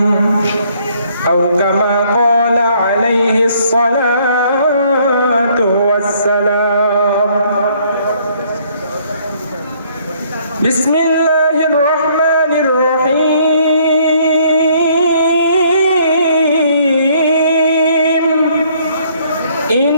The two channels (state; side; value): inverted; both; correlation -0.64